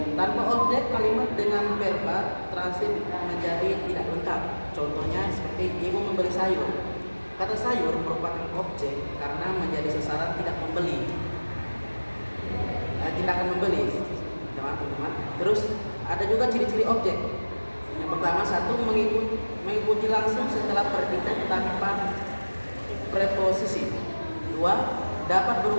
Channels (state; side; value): inverted; both; correlation -1.00